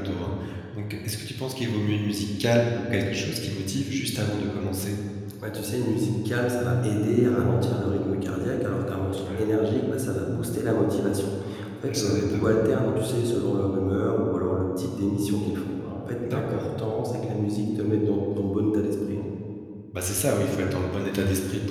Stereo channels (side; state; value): both; identical; correlation 1.00